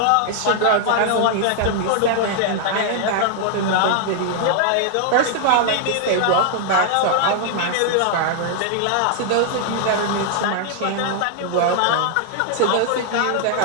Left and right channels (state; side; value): different; both; correlation 0.00